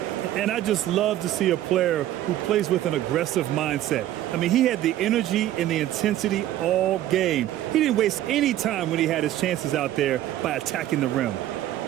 And I just love to see a player who plays with an aggressive mindset. I mean, he had the energy and the intensity all game. He didn't waste any time when he had his chances out there by attacking the rim.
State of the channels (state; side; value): quieter; left; 13.4 dB